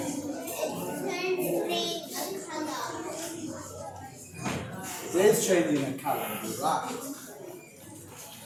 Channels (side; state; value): both; identical; correlation 1.00